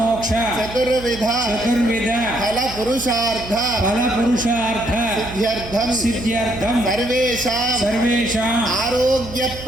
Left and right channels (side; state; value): right; noise; hum, 14 dB below the sound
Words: చతుర్విధ చతుర్విధ ఫల పురుషార్థ ఫల పురుషార్థ సిద్ధ్యర్థం సిద్ధ్యర్థం సర్వేషాం సర్వేషాం ఆరోగ్య